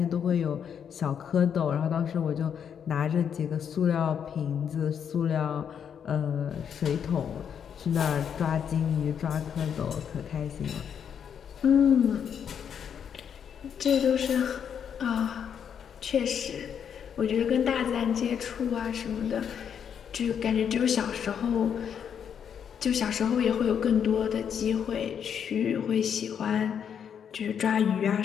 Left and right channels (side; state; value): right; quieter; 8.0 dB